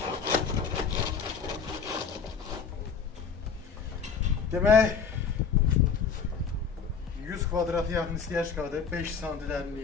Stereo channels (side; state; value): right; quieter; 6.0 dB